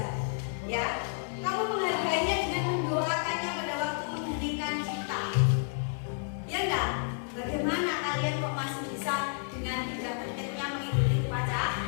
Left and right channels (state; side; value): silent; right; 57 dB below the other